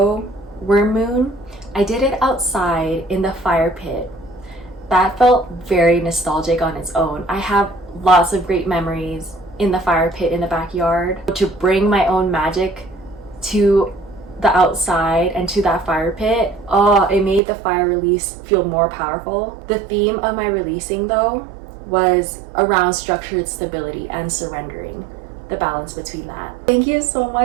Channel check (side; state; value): left; drops out; at 17.4 s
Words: worm moon, I did it outside in the fire pit. That felt very nostalgic on its own. I have lots of great memories in the fire pit in the backyard. To bring my own magic to the outside and to that fire pit, it made the fire release feel more powerful. The theme of my releasing though was around structured stability and surrendering, the balance between that. Thank you so